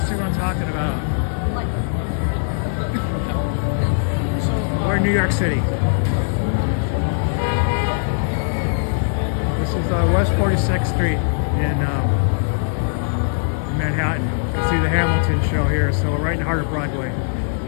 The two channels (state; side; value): silent; right; 62 dB below the other